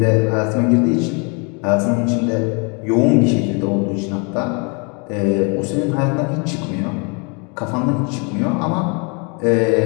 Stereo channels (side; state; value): right; quieter; 33.7 dB